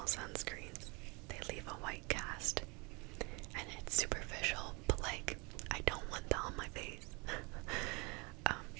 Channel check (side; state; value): left; quieter; 28.9 dB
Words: sunscreens, they leave a white cast, and it's superficial, but like, I don't want that on my face.